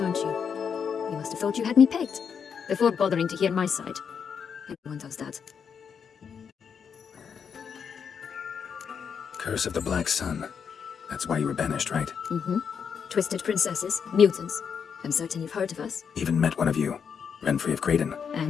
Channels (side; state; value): right; quieter; 6.9 dB